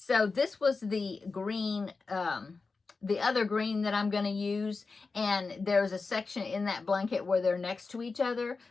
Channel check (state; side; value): quieter; right; 4.2 dB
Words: this was the green, the other green that I'm gonna use, and there's a section in that blanket where they're next to each other.